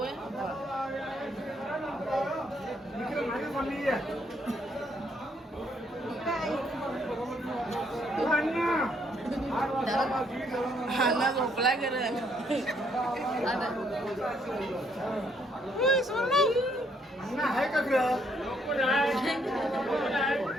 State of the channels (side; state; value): both; normal; correlation 0.70